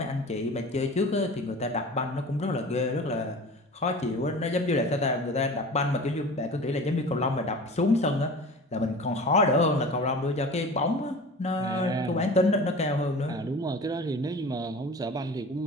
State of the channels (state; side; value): normal; both; correlation 0.38